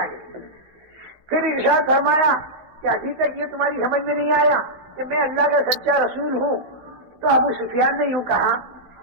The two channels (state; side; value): late; left; 15 ms